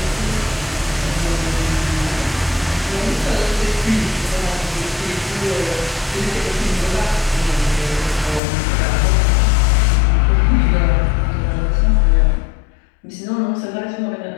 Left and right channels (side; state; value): right; drops out; at 8.4 s